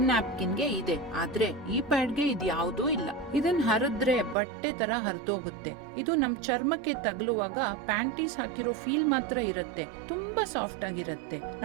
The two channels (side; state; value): left; drops out; at 4.4 s